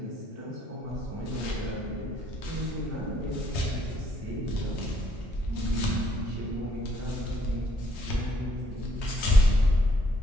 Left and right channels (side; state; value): both; normal; correlation 0.68